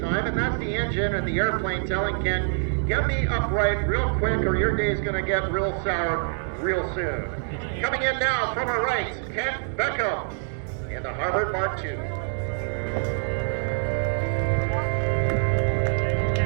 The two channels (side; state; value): left; silent; 57 dB below the other